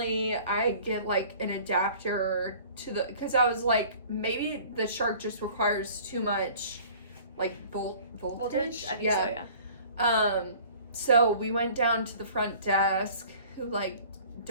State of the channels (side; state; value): both; inverted; correlation -0.49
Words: I get like an adapter to because I was like, maybe the Shark just requires too much like voltage. I think so, yeah. So we went down to the front desk, who like